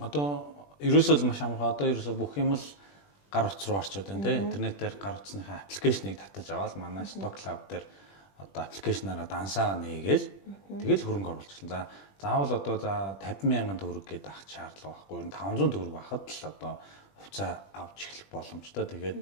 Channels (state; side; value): late; right; 20 ms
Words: Одоо ерөөсөө маш амархан. Одоо ерөөсөө бүх юм л гар утас руу орчод байна те. Интернетээр гар утасныхаа аппликейшнийг татаж аваад манай Stock Cloud дээр одоо аппликейшнаараа дансаа нээгээл тэгэл хөрөнгө оруулчихлаа. За заавал одоо 50,000 төгрөг гээд авах шаардлага байхгүй. 500 төгрөг байхад л одоо хувьцаа авч эхлэх боломжтой. Тэгээд